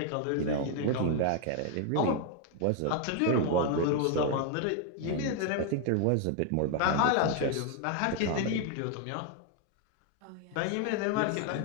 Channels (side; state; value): both; different; correlation 0.00